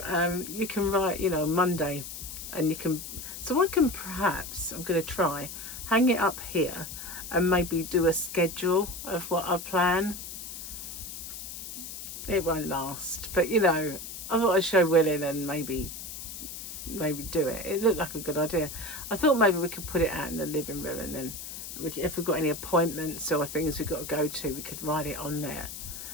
you can write, you know, Monday, and you can, so I can perhaps, I'm going to try, hang it up here and maybe do a schedule of what I plan. It won't last, but you know, I thought I'd show Willin and maybe do it. It looked like a good idea. I thought maybe we could put it out in the living room, and then if we've got any appointments or things we've got to go to, we could write it on there.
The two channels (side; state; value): left; noise; hiss, 9 dB below the sound